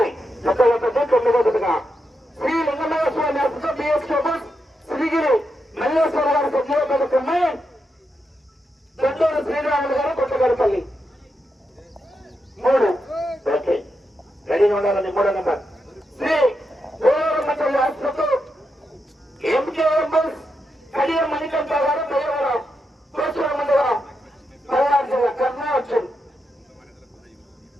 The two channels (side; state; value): both; normal; correlation 0.85